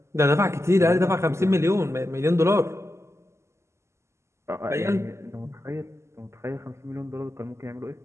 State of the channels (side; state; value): left; late; 0.13 ms